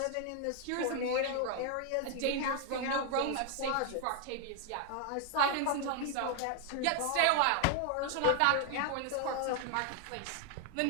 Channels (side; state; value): both; different; correlation 0.00